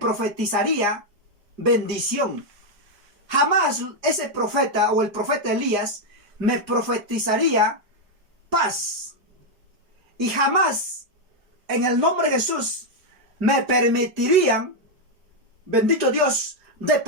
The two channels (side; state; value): left; late; 5.0 ms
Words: bendición. Jamás ese profeta o el profeta Elías me profetizaría paz. Y jamás en el nombre de Jesús me permitirían, bendito Dios, de